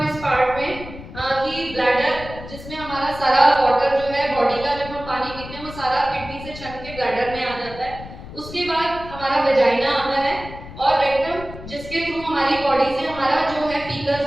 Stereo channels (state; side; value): noise; left; rumble, 14 dB below the sound